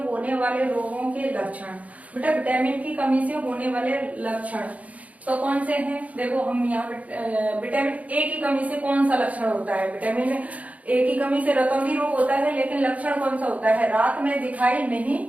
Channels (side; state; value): left; late; 0.069 ms